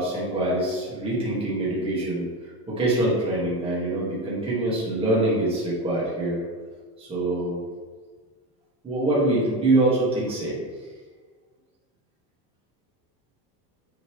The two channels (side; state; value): both; normal; correlation 0.22